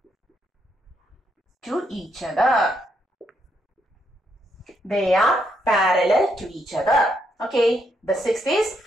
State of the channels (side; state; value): both; normal; correlation 0.77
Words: to each other. They are parallel to each other. Okay, the sixth is,